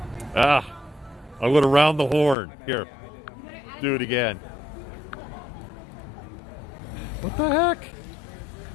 I went around the horn. Here, do it again. What the heck?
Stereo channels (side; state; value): right; drops out; at 2.4 s